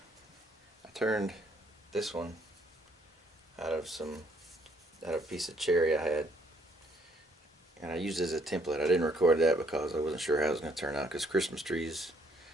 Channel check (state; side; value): normal; both; correlation 0.66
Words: I turned this one out of a piece of cherry I had. And I used it as a template. I didn't record that because I wasn't sure how it was going to turn out, because Christmas trees